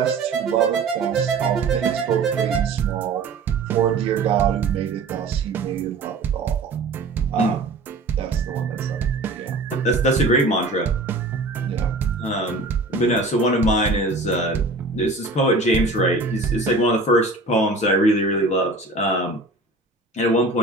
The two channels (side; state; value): left; quieter; 3.3 dB